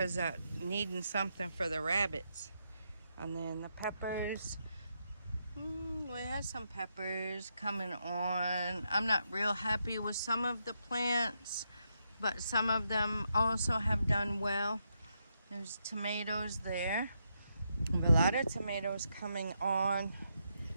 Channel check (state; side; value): inverted; both; correlation -0.81